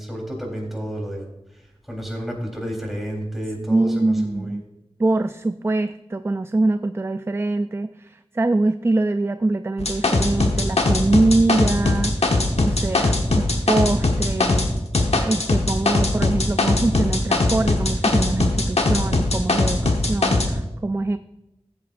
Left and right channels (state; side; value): normal; both; correlation 0.82